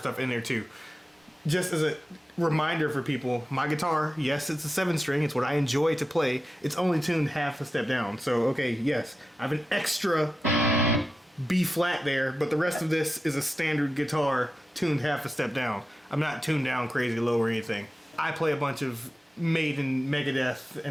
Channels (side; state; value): both; normal; correlation 0.92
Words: in there too. Just as a reminder for people, my guitar, yes, it's a 7-string. It's what I enjoy to play. It's only tuned half a step down. So, okay, yes, I have an extra B flat there, but the rest of this is a standard guitar tuned half a step down. I'm not tuned down crazy low or anything. I play a bunch of Maiden, Megadeth,